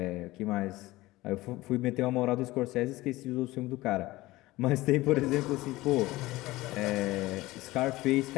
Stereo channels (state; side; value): quieter; right; 18.7 dB